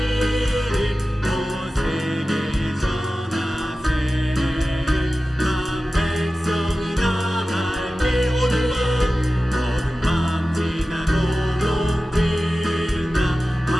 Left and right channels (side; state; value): both; normal; correlation 0.95